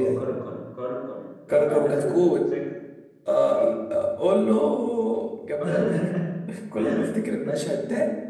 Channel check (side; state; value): both; identical; correlation 1.00